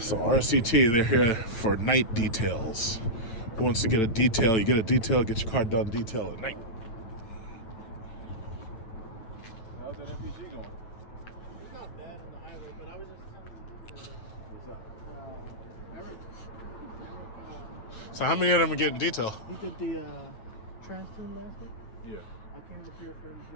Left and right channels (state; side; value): late; right; 8.9 ms